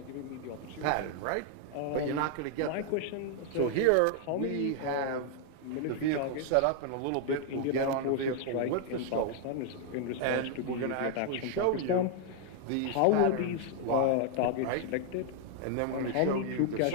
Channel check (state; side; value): different; both; correlation 0.00